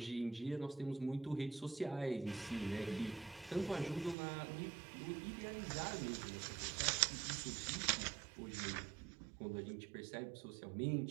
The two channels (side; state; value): left; drops out; at 4.2 s